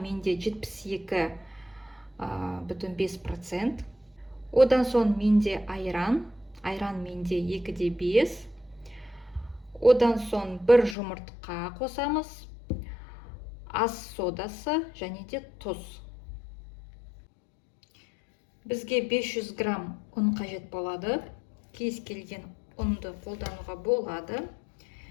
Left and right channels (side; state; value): right; drops out; at 11.0 s